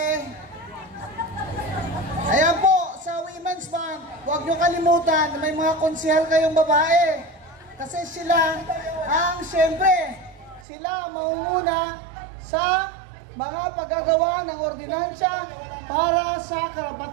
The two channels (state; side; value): drops out; left; at 10.7 s